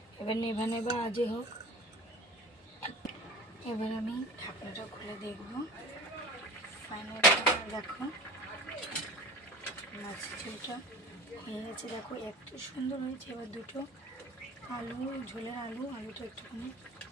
এবার নেভা নেভা আজে হোক। এবার আমি ঢাকনাটা খুলে দেখব। ফাইনালি দেখো মাছের ঝোলটা হয়ে গেছে। দেখো এত সুন্দর হয়েছে। এবার দুটো আলু, ঝোলের আলুটা একটুখানি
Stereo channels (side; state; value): both; normal; correlation 0.38